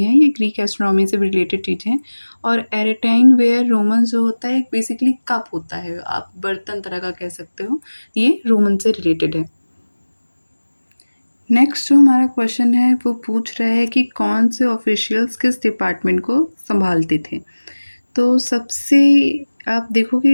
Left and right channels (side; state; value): both; inverted; correlation -1.00